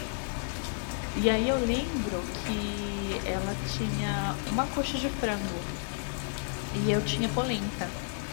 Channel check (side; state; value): right; silent; digital silence